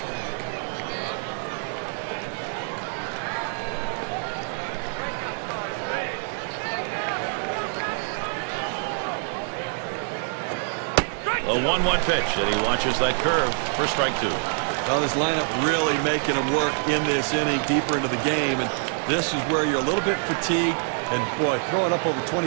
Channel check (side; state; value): left; silent; 58 dB below the other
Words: A 1-1 pitch, and he watches that curve for strike 2. Well, this lineup really making him work in this inning deeper into the game, and this is where you're a little bit fatigued, and boy, throwing up over